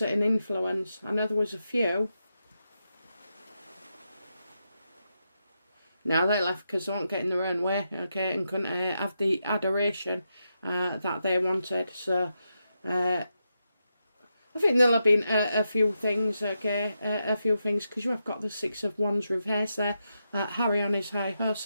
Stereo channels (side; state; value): both; inverted; correlation -0.86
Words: it an influence? I know there was a few. Now they left because they weren't getting their own way, okay, and couldn't have the adoration that they wanted. So I think there'll have been a few things, okay, a few things, because you have got the Six of Wands reverse there. Harry on his high